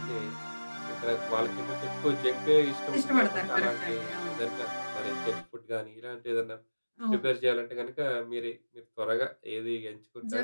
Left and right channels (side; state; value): both; inverted; correlation -1.00